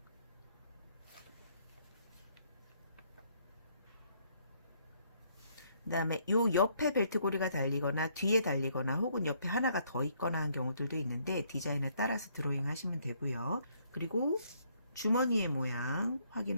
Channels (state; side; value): inverted; both; correlation -0.68